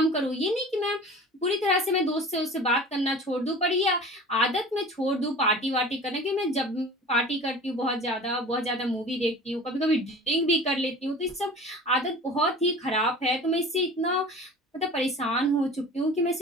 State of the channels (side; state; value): both; normal; correlation 0.39